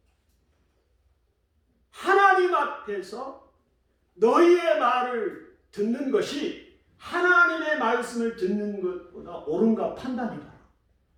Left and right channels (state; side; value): identical; both; correlation 1.00